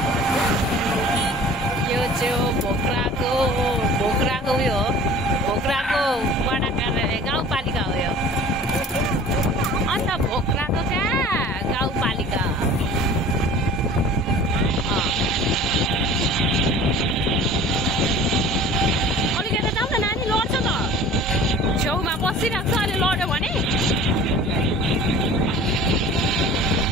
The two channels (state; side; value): normal; both; correlation 0.44